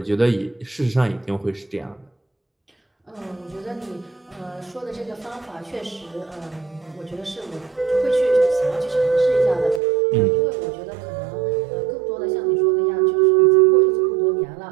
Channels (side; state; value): left; drops out; at 9.8 s